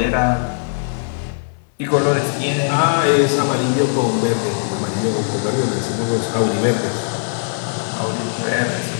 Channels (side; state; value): right; silent; 66 dB below the other